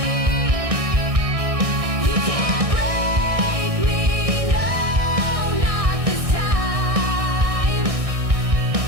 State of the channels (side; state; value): left; late; 1.6 ms